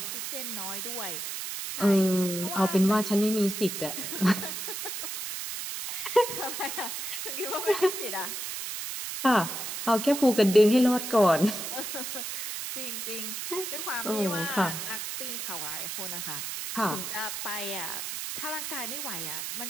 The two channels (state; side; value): noise; right; hiss, 5 dB below the sound